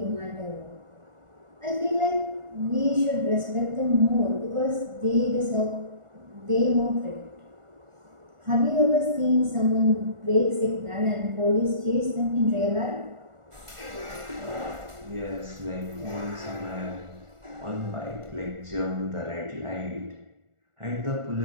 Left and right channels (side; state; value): left; late; 1.4 ms